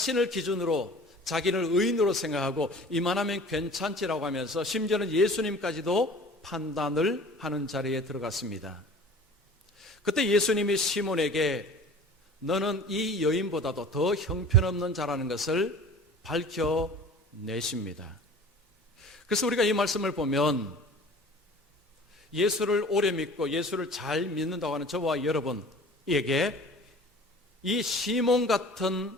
기준으로 자기를 의인으로 생각하고 이만하면 괜찮지라고 하면서 심지어는 예수님까지도 판단을 하는 자리에 들어갔습니다. 그때 예수님이 시몬에게 너는 이 여인보다도 더 형편없는 자라는 것을 밝혀내십니다. 그래서 우리가 이 말씀을 보면 예수를 오래 믿고 예수를 잘 믿는다고 하는 저와 여러분에게 이 시몬 같은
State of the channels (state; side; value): normal; both; correlation 0.44